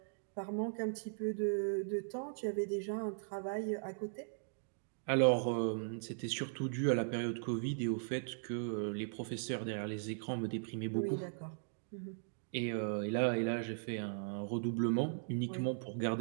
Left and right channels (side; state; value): left; silent; digital silence